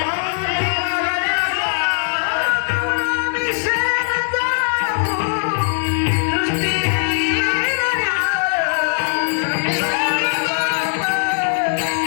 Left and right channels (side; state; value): right; silent; 56 dB below the other